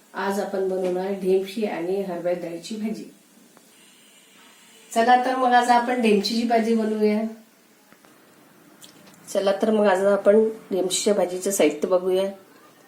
आज आपण बनवणार ढेमशी आणि हरभरा डाळीची भाजी। चला तर मग आज आपण ढेमशीची भाजी बनवूया। चला तर मग आज आपण ढेमशीच्या भाजीचं साहित्य बघूया।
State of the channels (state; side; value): identical; both; correlation 1.00